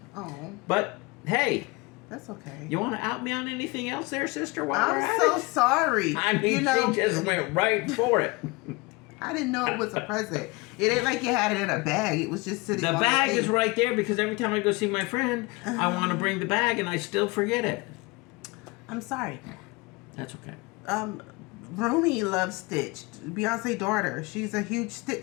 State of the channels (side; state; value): right; quieter; 25.0 dB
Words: Oh. But Hey, That's okay. you want to out me on anything else there, sister? While we're I'm at so it? sorry. I mean, you know, she just went right for it. I didn't know it was a present. It ain't like you had it in a bag. It was just sitting The on bag the is thing. right there because every time I go see my friend, I want to bring the bag and I still forget it. I'm sorry. That's okay. Rumi loves Stitch. Beyonce's daughter. She's a huge